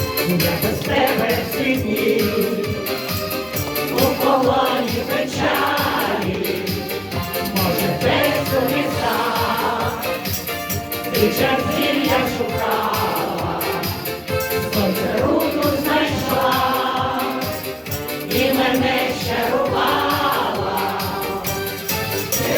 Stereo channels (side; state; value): both; identical; correlation 1.00